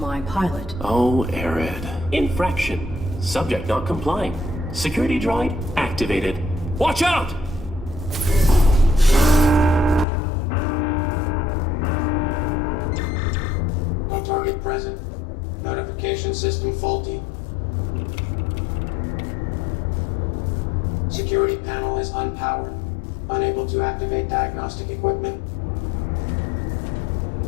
pilot. Oh, Arid. Infraction. Subject not complying. Security droid activated. Watch out! No target present. Notification system faulty. Security panel is unpowered. Unable to activate diagnostic equipment.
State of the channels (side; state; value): right; drops out; at 10.1 s